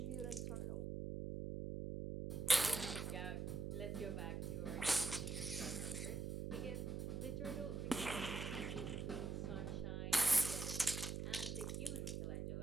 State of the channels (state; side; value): noise; right; hum, 3 dB below the sound